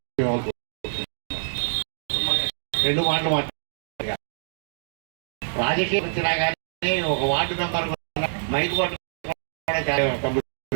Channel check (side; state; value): left; silent; digital silence